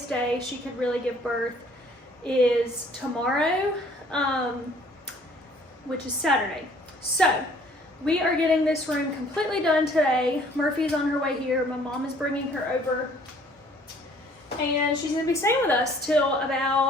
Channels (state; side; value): normal; both; correlation 0.58